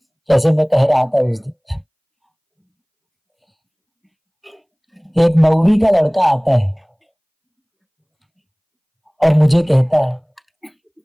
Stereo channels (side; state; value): both; identical; correlation 1.00